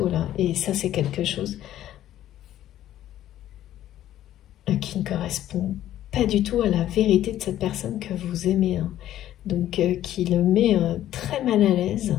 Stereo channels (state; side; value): quieter; right; 12.6 dB